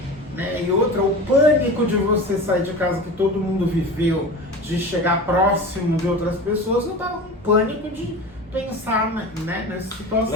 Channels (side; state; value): both; normal; correlation 0.32